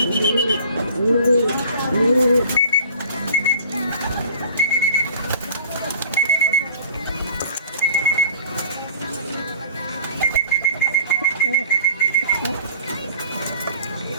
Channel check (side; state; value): both; inverted; correlation -0.47